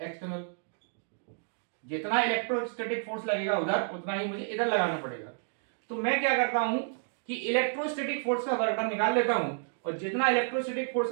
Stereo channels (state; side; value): silent; left; digital silence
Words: जितना इलेक्ट्रोस्टैटिक फोर्स लगेगा उधर उतना ही मुझे इधर लगाना पड़ेगा। तो मैं क्या करता हूं कि इलेक्ट्रोस्टैटिक फोर्स का वर्क डन निकाल लेता हूं और जितना इलेक्ट्रोस्टैटिक फोर्स